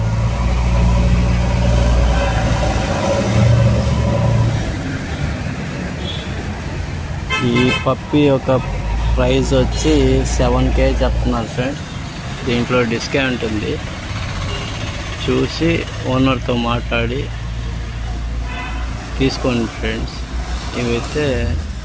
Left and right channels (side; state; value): both; identical; correlation 1.00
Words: ఈ పప్పీ యొక్క ప్రైస్ వచ్చి 7K చెప్తున్నారు ఫ్రెండ్స్. దీంట్లో డిస్కౌంట్ ఉంది, చూసి ఓనర్తో మాట్లాడి తీసుకోండి ఫ్రెండ్స్. ఇవైతే